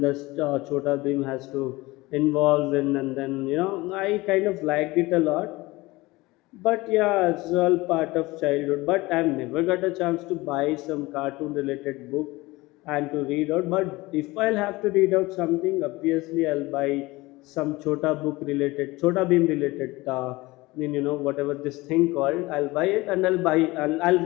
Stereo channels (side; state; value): right; quieter; 21.1 dB